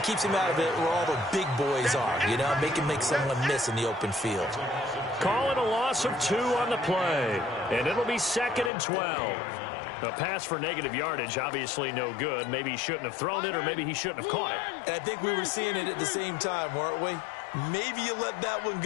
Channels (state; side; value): drops out; right; at 8.7 s